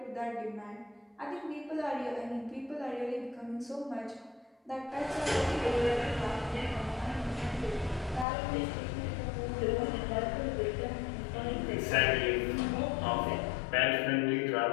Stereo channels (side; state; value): right; drops out; at 8.2 s